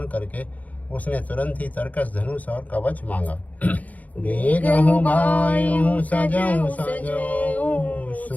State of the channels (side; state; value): right; late; 0.072 ms